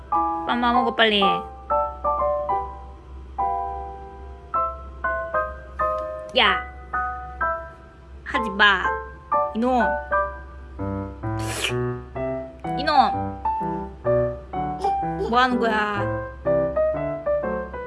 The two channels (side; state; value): both; identical; correlation 1.00